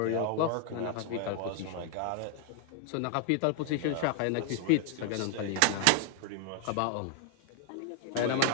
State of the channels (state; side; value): different; both; correlation 0.00